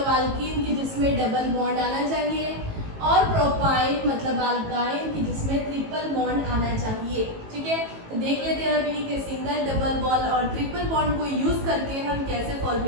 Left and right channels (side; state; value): left; late; 18 ms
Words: अल्कीन की जिसमें डबल बॉन्ड आना चाहिए, और प्रोपाइन मतलब अल्काइन की जिसमें ट्रिपल बॉन्ड आना चाहिए। ठीक है, तो देख लेते हैं अभी कि सिंगल, डबल बॉन्ड और ट्रिपल बॉन्ड को यूज करके हम कैसे